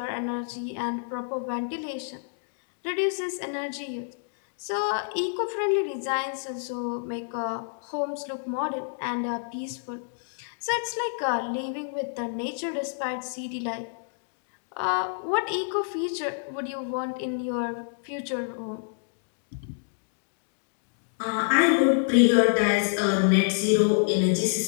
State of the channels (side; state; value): right; silent; digital silence